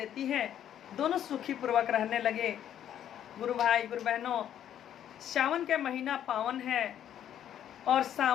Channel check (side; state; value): right; quieter; 10.4 dB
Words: है। दोनों सुखी पूर्वक रहने लगे। गुरु भाई गुरु बहनों, सावन के महीना पावन है और